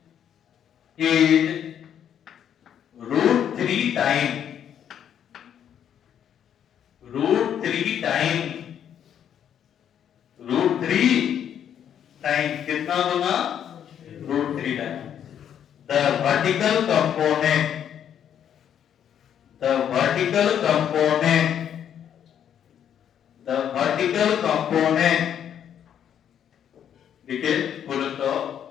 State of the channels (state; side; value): quieter; right; 9.3 dB